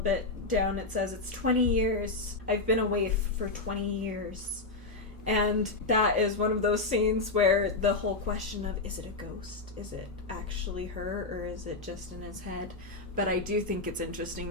down it says, "It's 20 years. I've been away for 20 years. And that is one of those scenes where the whole question of, is it a ghost? Is it actually her, or is it just in his head? But I do think it's interesting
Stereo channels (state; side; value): quieter; right; 3.4 dB